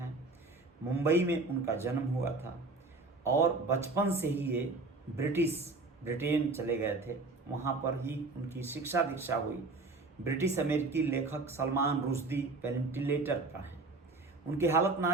मुंबई में उनका जन्म हुआ था और बचपन से ही ये ब्रिटेन चले गए थे, वहाँ पर ही उनकी शिक्षा दीक्षा हुई। ब्रिटिश अमेरिकी लेखक सलमान रुश्दी वेंटिलेटर पर हैं। उनकी हालत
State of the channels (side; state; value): left; quieter; 3.5 dB